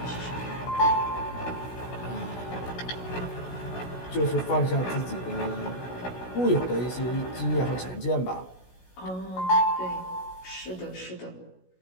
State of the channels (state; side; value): late; right; 16 ms